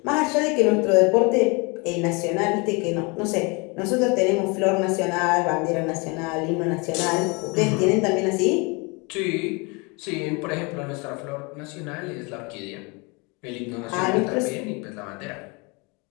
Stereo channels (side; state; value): right; quieter; 29.2 dB